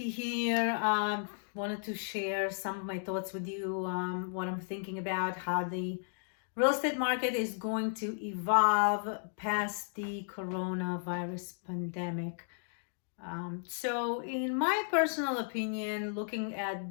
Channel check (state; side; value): silent; right; digital silence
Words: here. Wanted to share some of my thoughts with you, what I'm thinking about, how the real estate market is going to evolve past the coronavirus pandemic. So, in my personal opinion, looking at